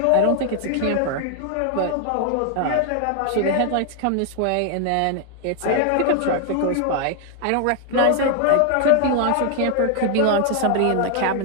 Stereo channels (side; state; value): both; different; correlation 0.00